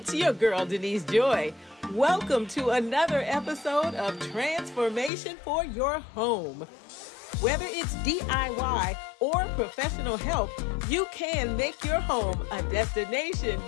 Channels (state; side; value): drops out; right; at 5.1 s